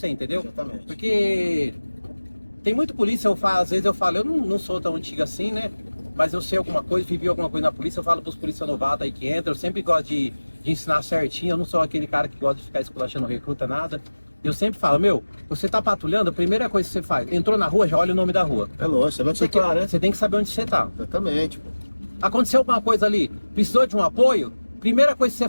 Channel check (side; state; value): both; inverted; correlation -1.00